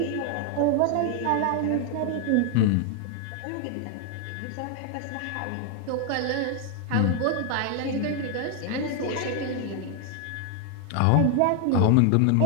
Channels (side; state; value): both; different; correlation 0.00